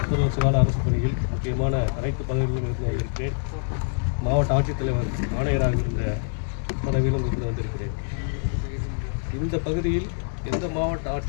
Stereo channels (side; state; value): right; silent; 62 dB below the other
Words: 30 வருஷ கால அரசு பணியில் முக்கியமான அனைத்து பதவிகளிலும் இருந்து வந்திருக்கிறேன். மாவட்ட ஆட்சித்தலைவர் ஆணையராக இருந்த பதவியிலும் இருந்து வந்திருக்கிறேன். இந்த பகுதியில் எந்த மாவட்ட